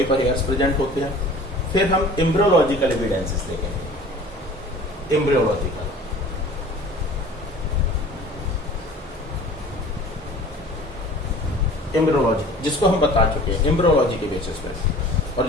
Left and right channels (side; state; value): both; normal; correlation 0.45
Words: पर हेयर्स प्रेजेंट होते हैं। फिर हम एम्ब्रियोलॉजिकल एविडेंसेस देखेंगे। एम्ब्रियोलॉजिकल जिसको हम बता चुके हैं एम्ब्रियोलॉजी के बेसिस पर, और